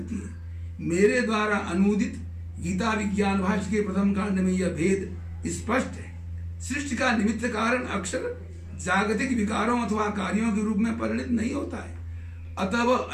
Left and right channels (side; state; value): both; identical; correlation 1.00